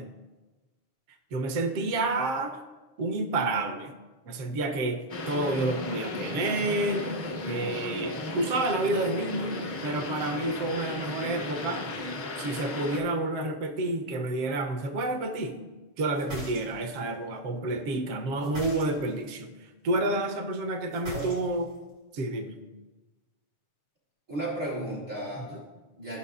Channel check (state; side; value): late; left; 7.4 ms